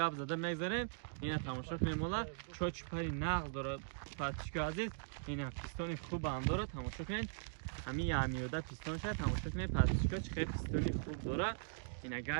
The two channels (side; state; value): left; silent; digital silence